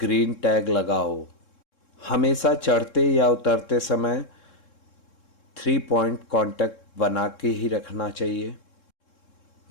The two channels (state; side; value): late; right; 3.7 ms